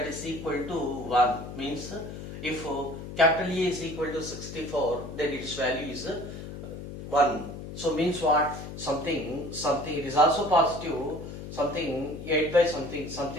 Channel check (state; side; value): noise; left; hum, 10 dB below the sound